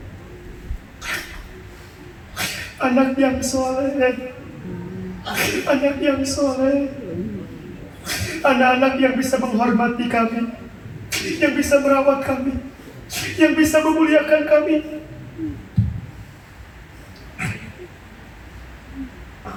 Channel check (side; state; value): both; identical; correlation 1.00